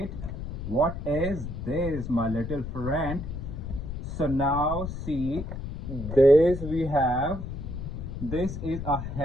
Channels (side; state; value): left; noise; rumble, 7 dB below the sound